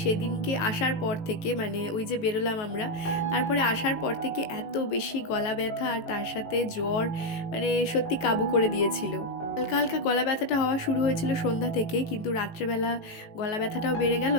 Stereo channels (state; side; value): late; right; 18 ms